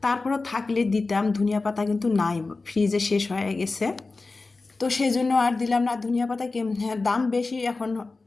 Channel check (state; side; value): quieter; right; 3.7 dB